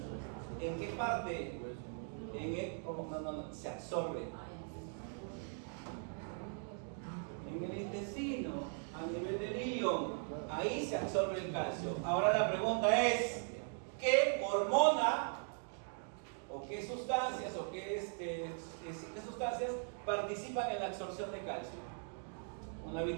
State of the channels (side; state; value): left; silent; 51 dB below the other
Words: ¿En qué parte? No, se absorbe. En el intestino, a nivel del ilion, ahí se absorbe el calcio. Ahora la pregunta es, ¿qué hormona o qué sustancias qué sustancias participan en la absorción de calcio? Una